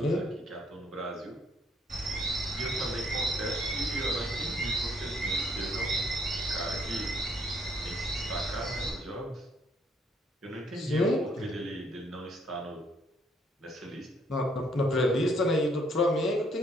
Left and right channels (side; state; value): both; normal; correlation 0.66